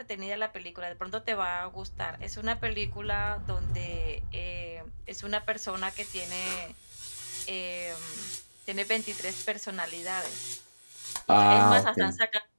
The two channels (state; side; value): inverted; both; correlation -1.00